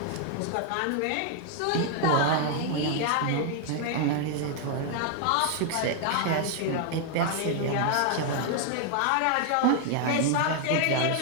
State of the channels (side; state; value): both; different; correlation 0.00